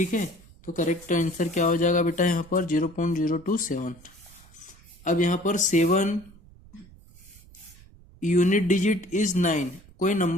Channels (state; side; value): noise; right; rumble, 24 dB below the sound